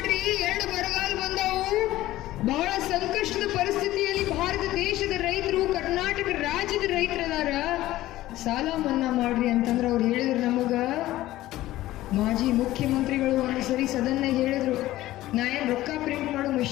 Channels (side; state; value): right; quieter; 15.7 dB